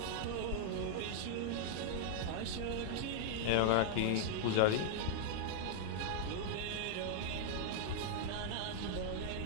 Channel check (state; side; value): different; both; correlation -0.01